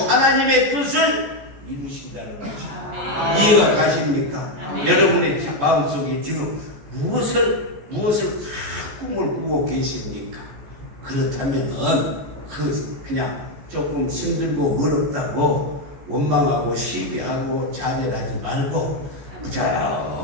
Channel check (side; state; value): left; late; 14 ms